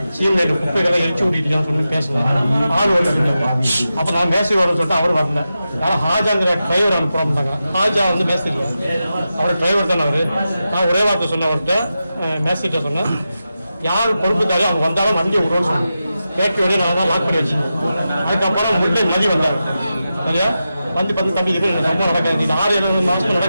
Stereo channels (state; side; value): inverted; both; correlation -0.91